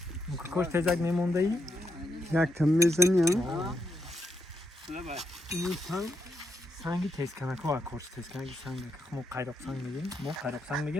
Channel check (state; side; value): normal; both; correlation 0.80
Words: کوش تزک میمونده ای یک کم میزنی این سنگی تیز کنک ها کورس تیز کنک سنگ ما قیرق سنگ